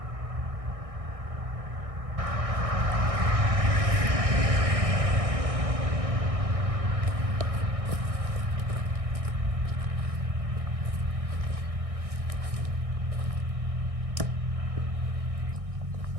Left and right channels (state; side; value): late; left; 1.6 ms